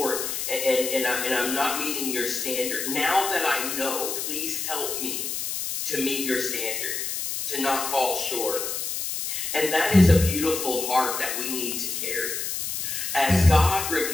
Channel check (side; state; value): left; noise; hiss, 3 dB below the sound